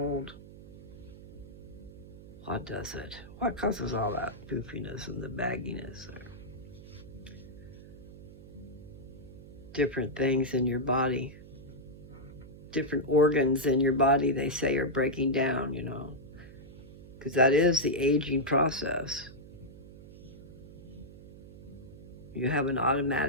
What does it? What causes all that poofiness and the bagginess? Or different things in your body, different organs in your body, they say, are breaking down, you know, because that is the aging process. You have an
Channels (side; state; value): right; noise; hum, 17 dB below the sound